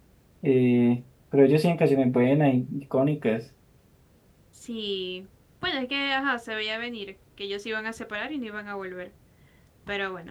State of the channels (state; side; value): identical; both; correlation 1.00